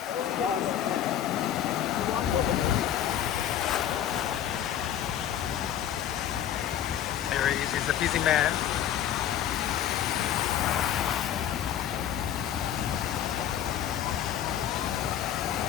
There he is, he's a busy man.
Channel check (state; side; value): quieter; right; 10.4 dB